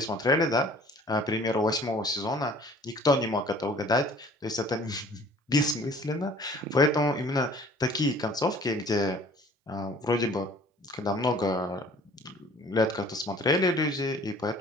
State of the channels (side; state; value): both; normal; correlation 0.51